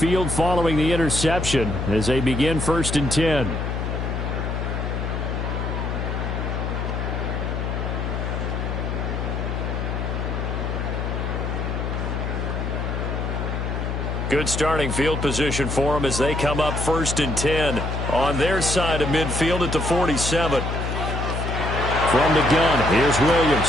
following the interception as they begin 1st and 10. Good starting field position for them as they come up 1st and 10 on their side of midfield at the 47. From the gun, here's Williams.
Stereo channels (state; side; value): noise; left; hum, 2 dB below the sound